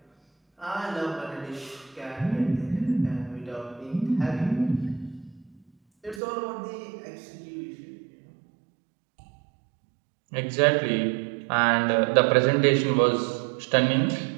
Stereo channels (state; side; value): drops out; left; at 6.2 s